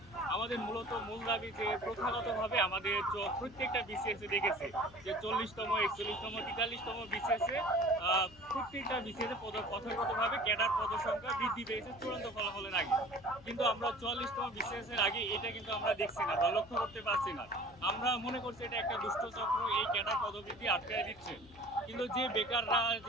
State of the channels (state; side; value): noise; left; hum, 23 dB below the sound